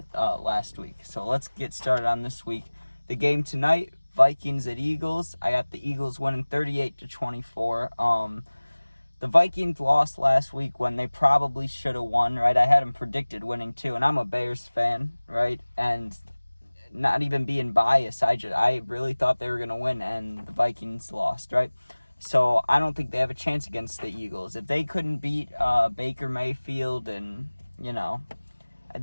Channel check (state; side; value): inverted; both; correlation -1.00